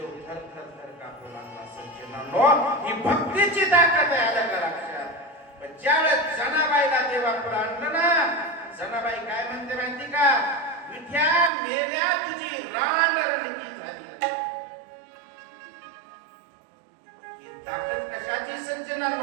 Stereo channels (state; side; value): drops out; left; at 11.5 s